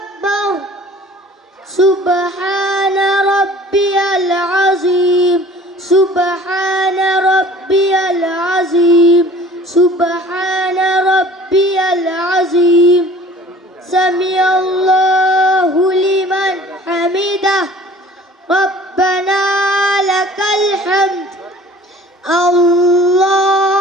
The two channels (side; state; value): both; normal; correlation 0.49